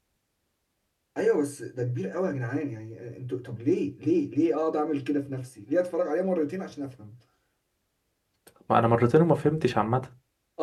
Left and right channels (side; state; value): both; identical; correlation 1.00